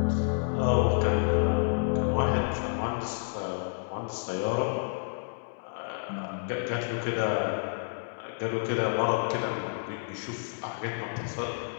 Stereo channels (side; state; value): right; silent; digital silence